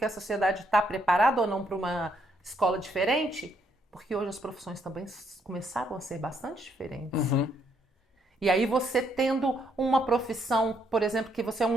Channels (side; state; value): both; normal; correlation 0.73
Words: a sociedade está preparada ou não para uma escola diferente, porque hoje as profissões também começaram a ser bastante diferentes. E aí você tendo uma profissão, por exemplo, que você é